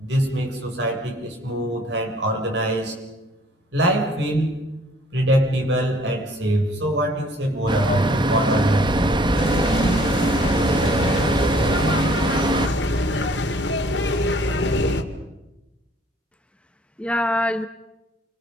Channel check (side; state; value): both; normal; correlation 0.58